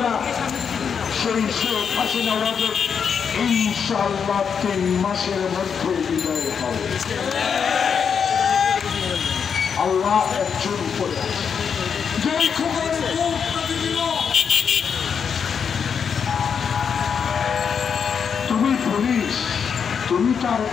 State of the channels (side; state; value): right; quieter; 6.8 dB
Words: না। সেই শেখ হাসিনা রাজের ইনশাআল্লাহ 3 মাসের মধ্যে বিদায় হবে। আল্লাহ একজন উপরে আছে। যেই খবরের তুমি পুলিশ, তুমি তার